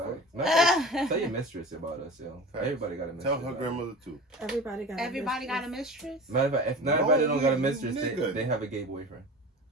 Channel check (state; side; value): normal; both; correlation 0.35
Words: Tell your mistress about us, yo. Everybody got a mistress. Tell her grandmother too. Everybody got a mistress. Matter of fact, if not everybody don't got a mistress, they have a gay boyfriend.